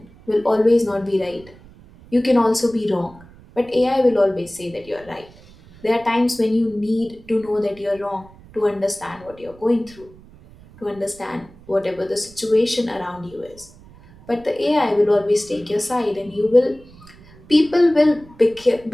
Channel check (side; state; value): right; noise; rumble, 23 dB below the sound